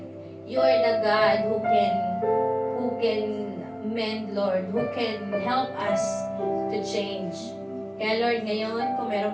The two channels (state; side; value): identical; both; correlation 1.00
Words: you are the God who can mend, Lord, who can help us to change. Kaya Lord, ngayon, kung